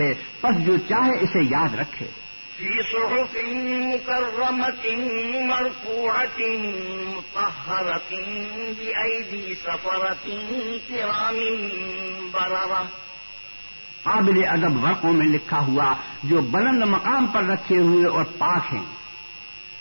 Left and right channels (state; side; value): inverted; both; correlation -1.00